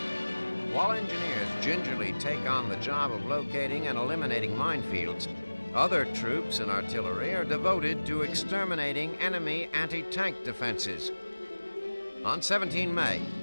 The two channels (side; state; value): both; inverted; correlation -1.00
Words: While engineers gingerly take on the job of locating and eliminating minefields, other troops and artillery are devoted to exterminating enemy anti-tank defenses. On 17 May,